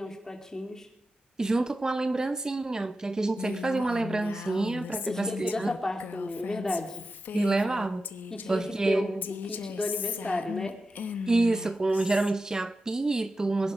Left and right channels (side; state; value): both; normal; correlation 0.91